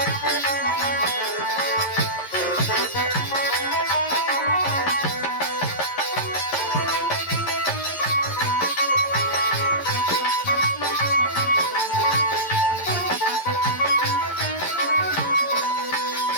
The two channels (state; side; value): late; right; 11 ms